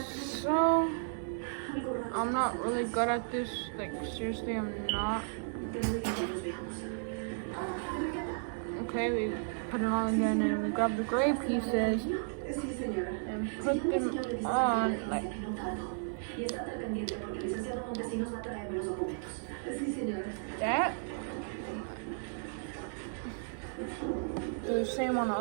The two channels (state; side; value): silent; left; 55 dB below the other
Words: so. I'm not really good at this. Like seriously, I'm not. Okay, we put it on again, and we grab the gray pieces and put them on like that. Do the same on the